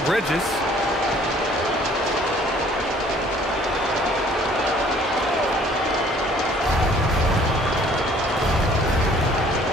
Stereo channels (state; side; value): normal; both; correlation 0.57